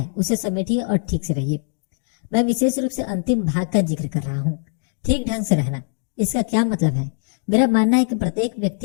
उसे समेटिए और ठीक से रहिए। मैं विशेष रूप से अंतिम भाग का जिक्र कर रहा हूँ, ठीक ढंग से रहना। इसका क्या मतलब है? मेरा मानना है कि प्रत्येक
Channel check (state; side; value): silent; right; digital silence